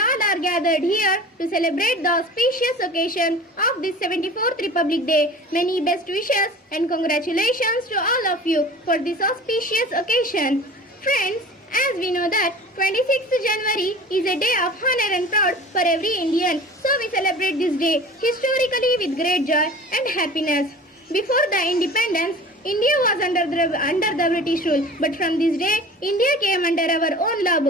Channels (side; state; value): both; normal; correlation 0.40